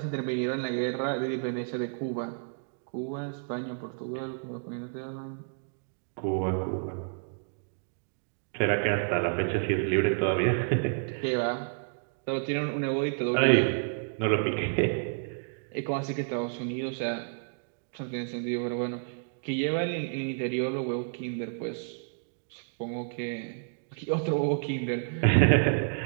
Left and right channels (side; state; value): left; silent; digital silence